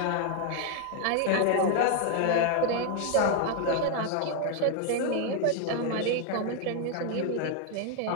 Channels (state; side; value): different; both; correlation 0.01